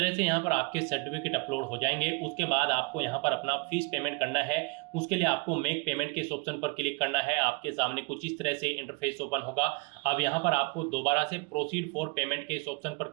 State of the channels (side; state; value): left; quieter; 28.6 dB